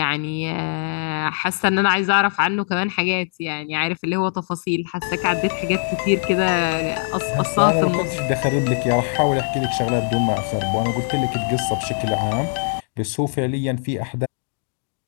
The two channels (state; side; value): silent; right; digital silence